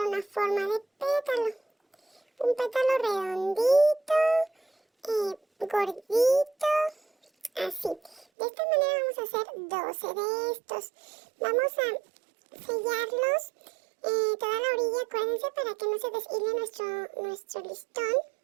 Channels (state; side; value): drops out; left; at 8.2 s